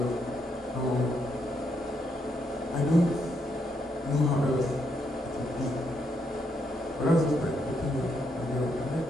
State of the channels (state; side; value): normal; both; correlation 0.78